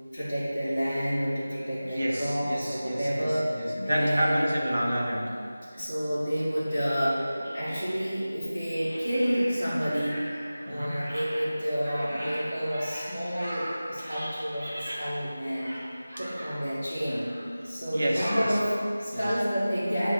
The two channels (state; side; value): inverted; both; correlation -0.97